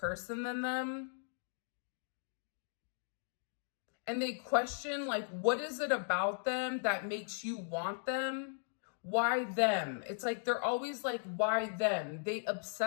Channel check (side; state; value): right; silent; digital silence